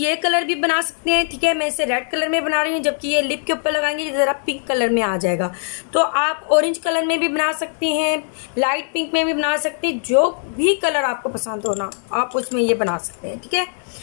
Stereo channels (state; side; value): silent; right; digital silence